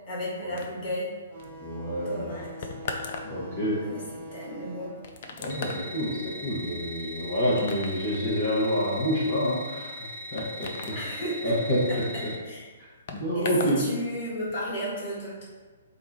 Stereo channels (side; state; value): both; inverted; correlation -0.45